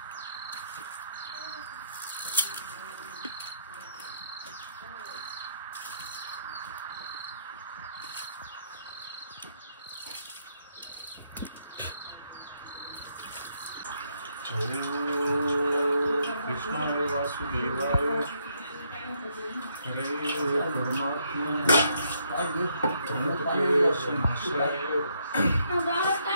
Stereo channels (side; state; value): both; inverted; correlation -0.73